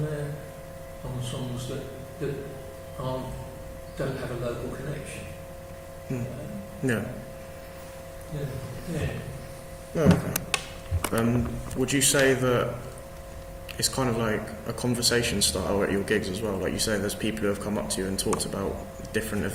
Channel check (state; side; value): identical; both; correlation 1.00